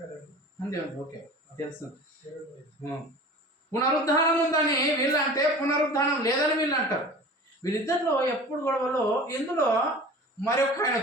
అంతే ఓకే తెలుసు. పునరుద్ధానం ఉందని వీళ్ళు అంటే పునరుద్ధానం లేదని వీళ్ళు అంటారు. వీళ్ళిద్దరిలో ఎప్పుడు గొడవలో ఇందులో మరొక ఆయన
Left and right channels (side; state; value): both; normal; correlation 0.39